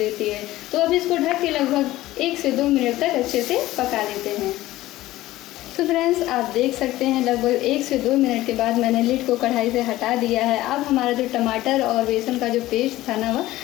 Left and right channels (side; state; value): right; quieter; 16.3 dB